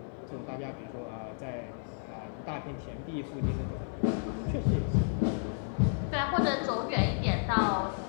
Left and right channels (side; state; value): right; silent; digital silence